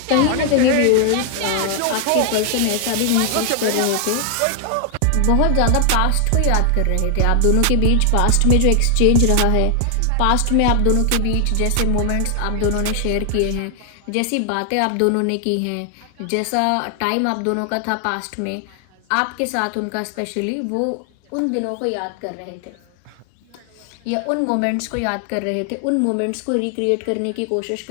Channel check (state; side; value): different; both; correlation 0.00